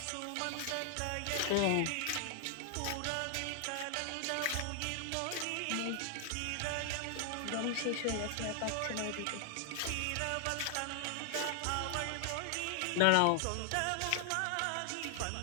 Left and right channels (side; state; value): both; different; correlation 0.00